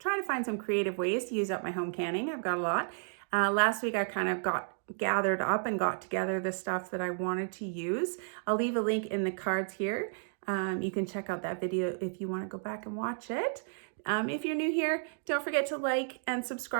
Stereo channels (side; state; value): left; silent; digital silence